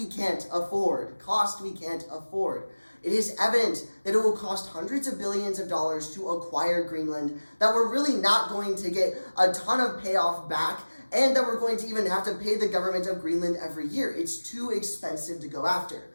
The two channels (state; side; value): inverted; both; correlation -1.00